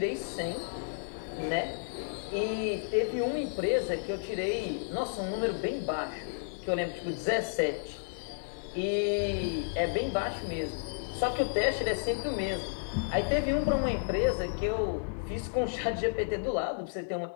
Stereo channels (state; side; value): silent; right; digital silence